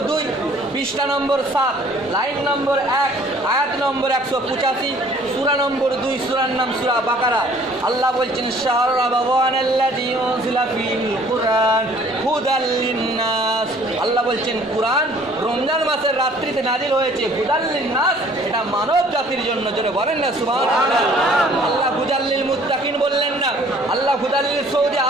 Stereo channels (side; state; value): both; normal; correlation 0.55